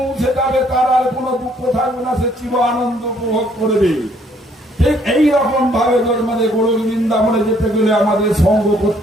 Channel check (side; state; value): both; normal; correlation 0.65